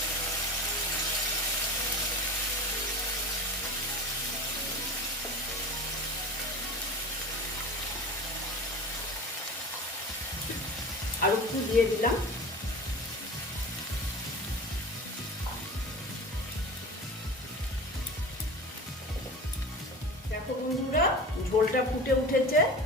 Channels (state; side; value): normal; both; correlation 0.34